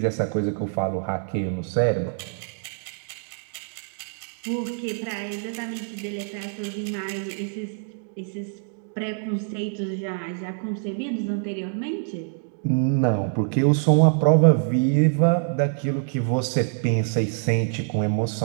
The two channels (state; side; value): silent; left; 61 dB below the other